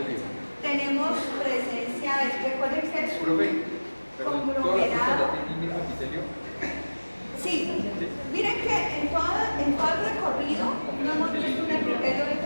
tenemos presencia de, recuerden que es un conglomerado. Sí, miren que en todo el recorrido no hemos visto un epitelio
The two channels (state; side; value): inverted; both; correlation -1.00